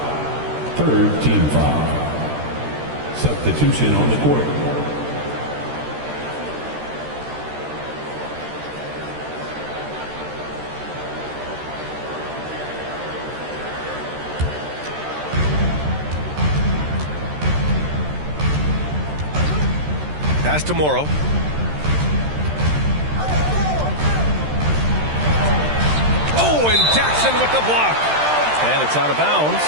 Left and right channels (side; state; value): left; late; 13 ms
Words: Third team foul. Substitution on the court. Pass to Morrow. Oh, and Jackson with the block. And it's out of bounds.